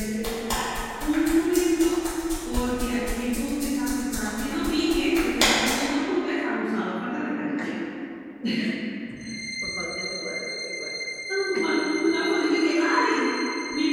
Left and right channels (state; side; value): identical; both; correlation 1.00